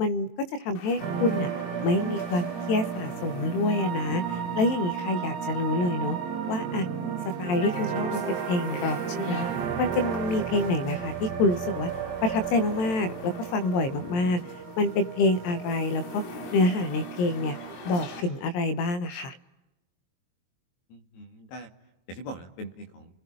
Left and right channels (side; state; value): right; late; 22 ms